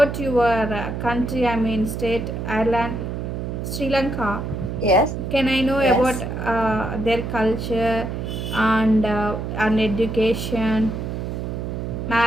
your country? I mean, state, Ireland, Sri Lanka. yes, Can I know about yes. their culture and education,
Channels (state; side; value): noise; right; hum, 4 dB below the sound